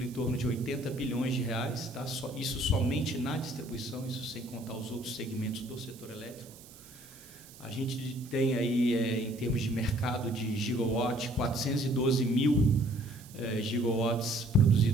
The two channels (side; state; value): right; noise; hiss, 20 dB below the sound